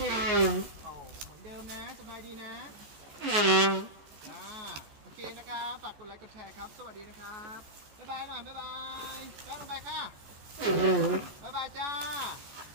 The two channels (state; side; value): late; left; 14 ms